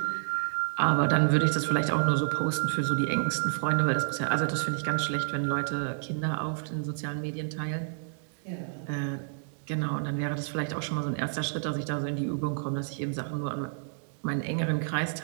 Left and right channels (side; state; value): left; silent; digital silence